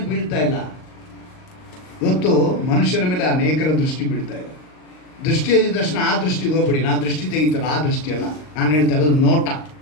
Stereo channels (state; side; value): late; right; 38 ms